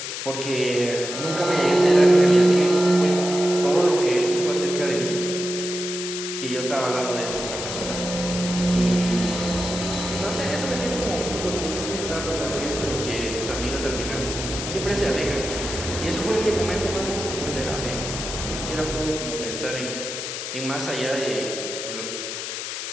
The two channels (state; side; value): noise; left; hiss, 6 dB below the sound